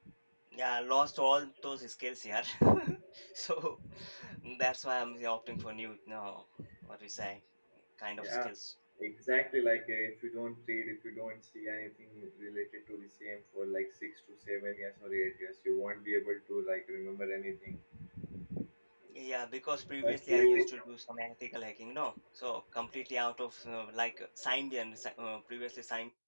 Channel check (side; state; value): both; inverted; correlation -1.00